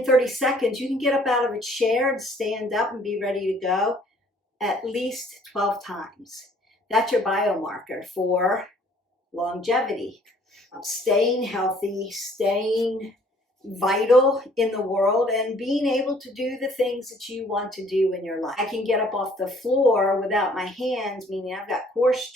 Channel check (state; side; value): normal; both; correlation 0.59